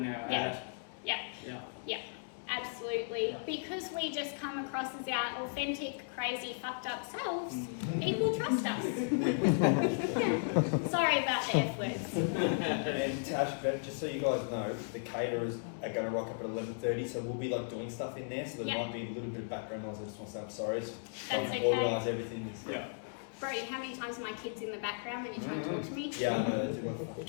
our ad. Absolutely. Because we just come across as our authentic, crazy, fucked up selves, people trust us. Sorry about the F words. And Tash, just so you guys know, the caterers are going to rock up at 11:30, so we'll be like doing stuff in there, so there might be a little bit of background noise. I just want to say I'm sorry. It's That's okay. Organise everything. Brody, how many times are my kids in the background when you try and talk to me? Yeah, I know, they do want to.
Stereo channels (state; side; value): silent; right; digital silence